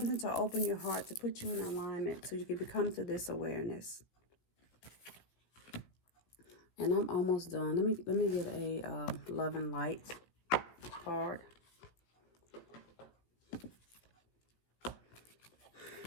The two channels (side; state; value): right; late; 17 ms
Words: to open your heart, to put you in alignment so you can become to this awareness. And I'm almost done. Let me get a love and light card.